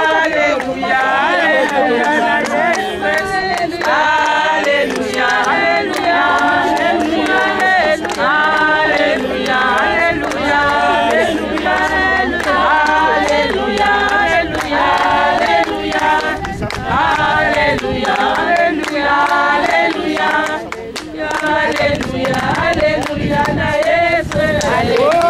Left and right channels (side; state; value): both; identical; correlation 1.00